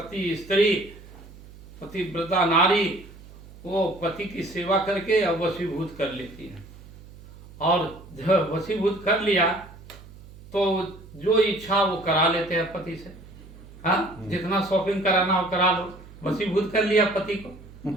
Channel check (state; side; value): noise; right; hum, 19 dB below the sound